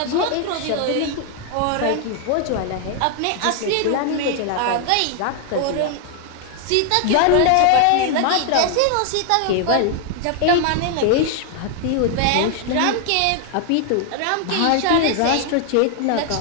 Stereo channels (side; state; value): both; different; correlation 0.00